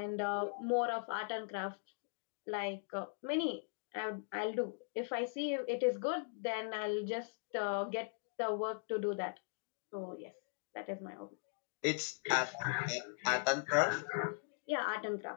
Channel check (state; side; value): quieter; right; 38.9 dB